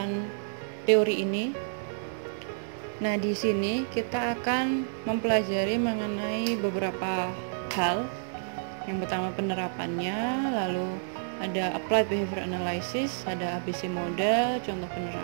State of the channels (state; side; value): silent; left; digital silence